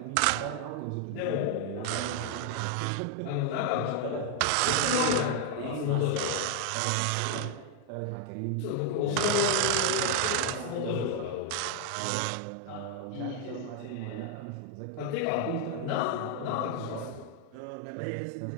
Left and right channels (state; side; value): different; both; correlation 0.00